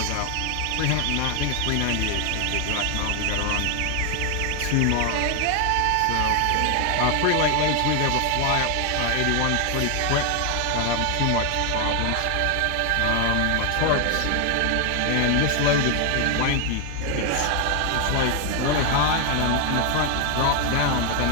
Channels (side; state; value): both; different; correlation 0.00